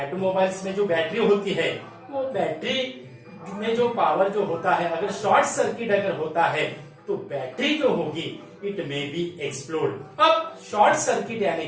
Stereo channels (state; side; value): identical; both; correlation 1.00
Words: में जो battery होती है, वो बैटरी में जो पावर जो होता है, अगर शॉर्ट सर्किट अगर होता है तो बैटरी जो होगी इट मे बी एक्सप्लोड। अब शॉर्ट सर्किट यानी